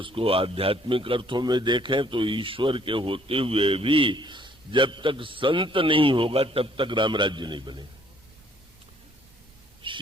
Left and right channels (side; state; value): both; normal; correlation 0.62